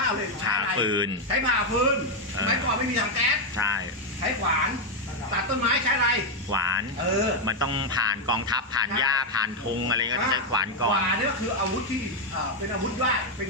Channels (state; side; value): normal; both; correlation 0.03